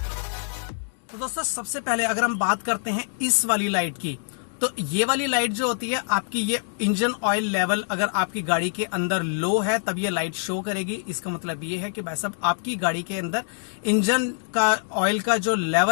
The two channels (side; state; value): right; silent; 62 dB below the other